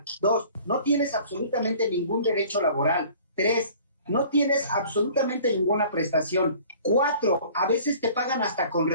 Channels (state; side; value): inverted; both; correlation -0.49